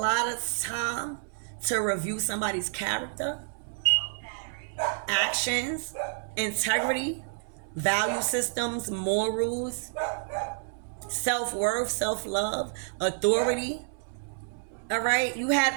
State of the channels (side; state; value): left; silent; 58 dB below the other